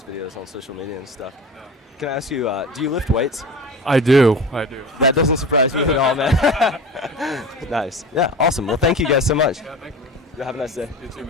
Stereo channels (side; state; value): both; normal; correlation 0.34